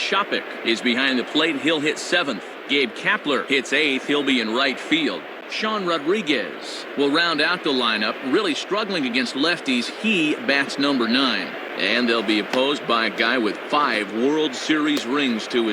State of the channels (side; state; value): both; identical; correlation 1.00